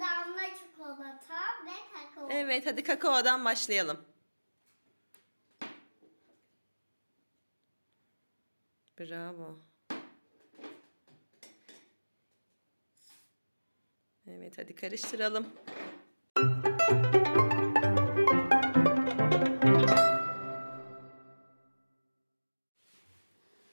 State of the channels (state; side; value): inverted; both; correlation -1.00